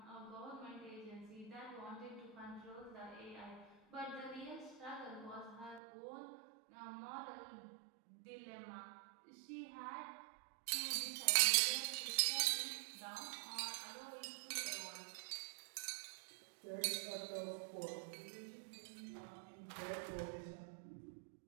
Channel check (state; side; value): drops out; left; at 5.8 s